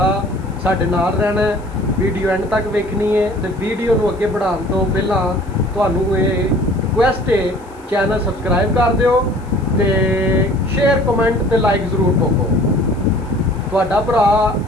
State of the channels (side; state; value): left; noise; hiss, 30 dB below the sound